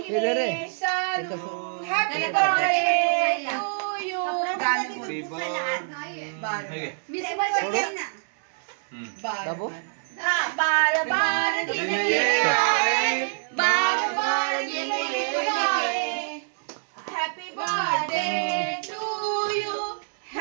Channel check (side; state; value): left; silent; digital silence